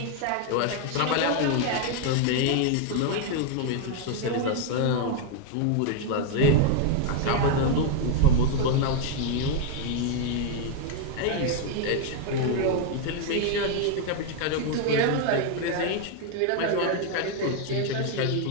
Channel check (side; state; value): both; different; correlation 0.00